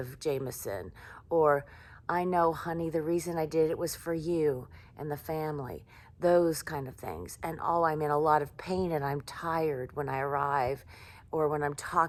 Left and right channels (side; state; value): both; identical; correlation 1.00